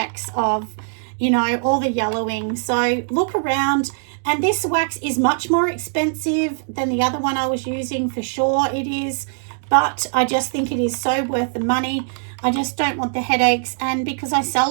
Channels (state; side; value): silent; left; digital silence